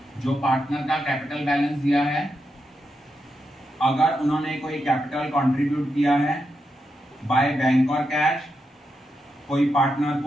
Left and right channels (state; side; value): normal; both; correlation 0.85